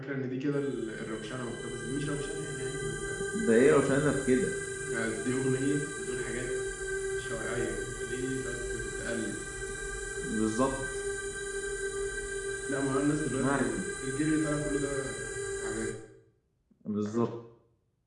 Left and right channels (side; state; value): both; identical; correlation 1.00